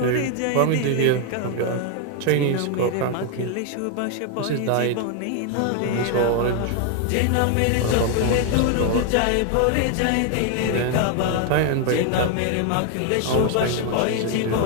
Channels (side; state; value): both; different; correlation 0.00